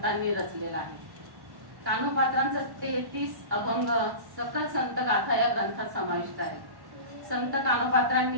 रचलेला आहे. कानोपात्रांचा 33 अभंग सकल संत गाथा या ग्रंथात समाविष्ट आहे. संत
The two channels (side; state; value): left; late; 1.1 ms